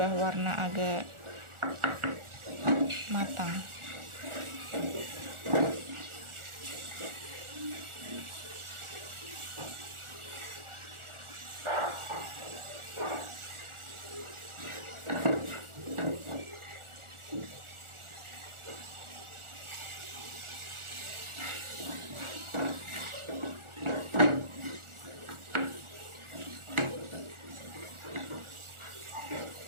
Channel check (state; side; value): late; left; 1.4 ms